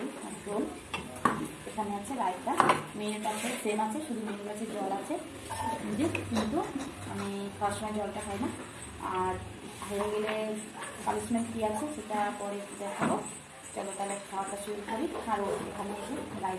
আর ঝোল, এখানে আছে রায়তা, মেনুটা আছে সেম আছে, শুধু মেনু আছে জল আছে কিন্তু আমি খাওয়ার সময় জলটা খাই না। আর হয়ে গেলে পানিশমেন্ট কী আছে সেটা পরে দেখাবো। চলো তাহলে খাওয়াটা শুরু করি। আর এখানে এসে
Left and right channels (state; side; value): identical; both; correlation 1.00